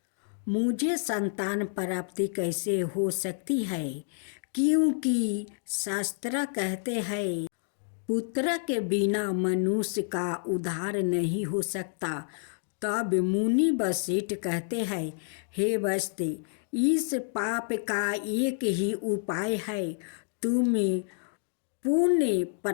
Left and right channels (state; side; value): silent; right; digital silence